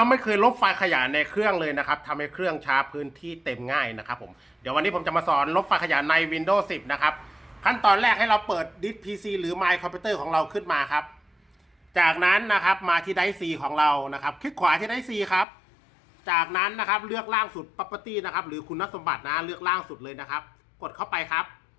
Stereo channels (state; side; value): drops out; right; at 15.5 s